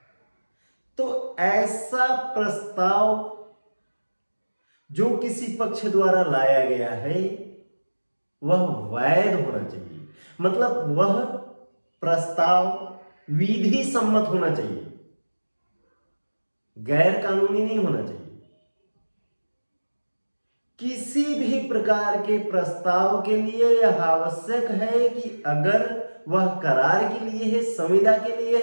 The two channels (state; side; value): inverted; both; correlation -1.00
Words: तो ऐसा प्रस्ताव जो किसी पक्ष द्वारा लाया गया है वह वैध होना चाहिए, मतलब वह प्रस्ताव विधि सम्मत होना चाहिए, गैर कानूनी नहीं होना चाहिए। किसी भी प्रकार के प्रस्ताव के लिए यह आवश्यक है कि अगर वह करार के लिए है, संविदा के लिए